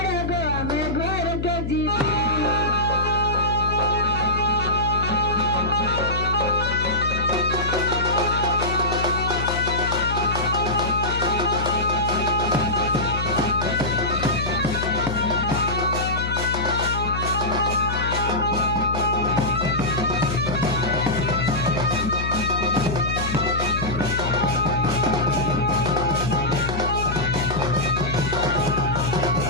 मैं घर के जीमू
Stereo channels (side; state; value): left; noise; hum, 4 dB below the sound